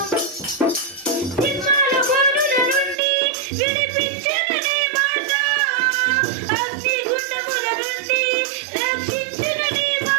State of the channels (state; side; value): drops out; left; at 3.0 s